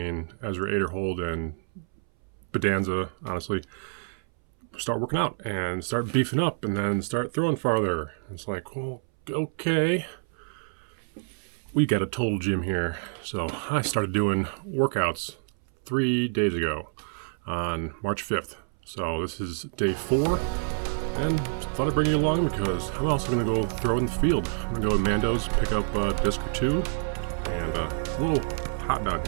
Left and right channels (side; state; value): left; silent; 60 dB below the other